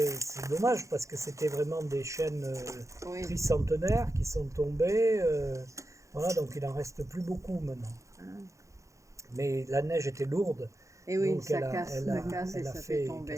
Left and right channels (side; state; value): left; late; 0.15 ms